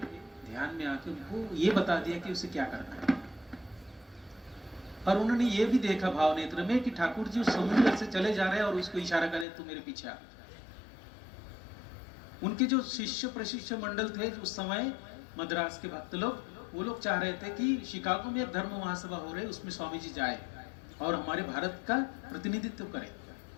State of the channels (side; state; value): right; drops out; at 9.5 s